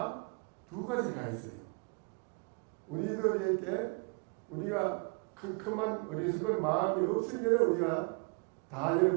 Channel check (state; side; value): quieter; left; 34.9 dB